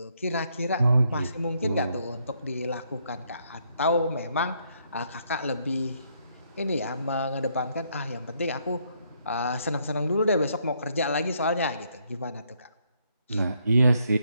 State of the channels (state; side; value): inverted; both; correlation -0.72